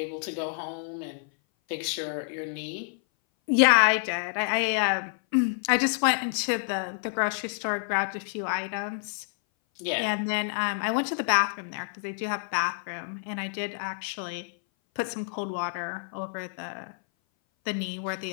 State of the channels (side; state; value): right; silent; 58 dB below the other